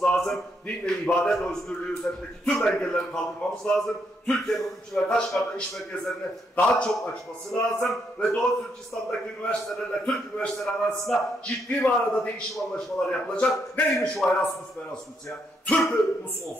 lazım. Din ve ibadet özgürlüğü üzerindeki tüm engelleri kaldırmamız lazım. Türkiye'nin Urumçi ve Kaşgar'da iş merkezlerini daha çok açması lazım. Ve Doğu Türkistan'daki üniversitelerle Türk üniversiteleri arasında ciddi manada değişim anlaşmaları yapılacak. Neymiş o Erasmus ya? Türk'ümüz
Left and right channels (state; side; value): normal; both; correlation 0.76